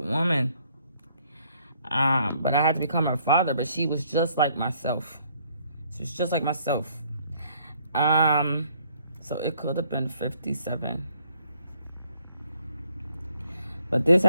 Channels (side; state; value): both; inverted; correlation -0.65